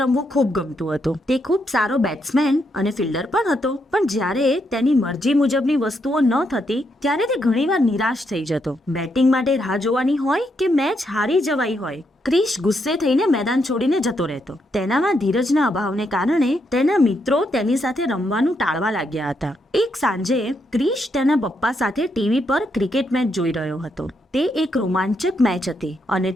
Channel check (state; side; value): normal; both; correlation 0.79